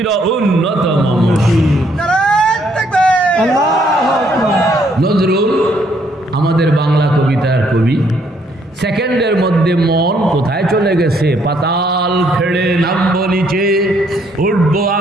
উন্নত মম নজরুল আমাদের বাংলা কবিতার কবি সেকেন্ডের মধ্যে মন কোথায় চলে গেছে পাতাল ফেড়ে নামবো নিচে উঠবো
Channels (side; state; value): both; normal; correlation 0.69